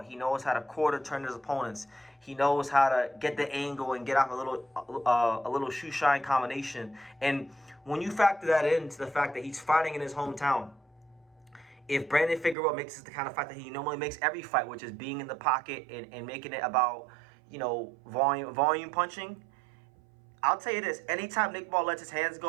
He knows how to quarter turn his opponents. He knows how to get the angle and get off a little shoe shine combination. And when you factor that into the fact that he's fighting in his hometown, if Brandon Figueroa makes it the kind of fight that he normally makes every fight, which is being in the pocket and making it about, you know, volume punching, I'll tell you this: anytime Nick Ball lets his hands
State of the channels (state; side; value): drops out; left; at 12.6 s